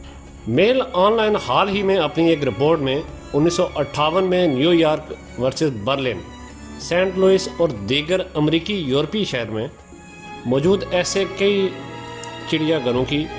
میل آن لائن حال ہی میں اپنی ایک رپورٹ میں 1958 میں New York versus Berlin, Saint Louis اور دیگر امریکی یورپی شہر میں موجود ایسے کئی چڑیا گھروں کی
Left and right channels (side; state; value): both; identical; correlation 1.00